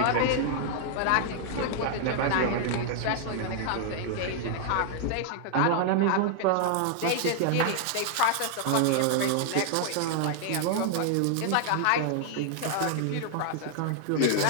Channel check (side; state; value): both; different; correlation 0.00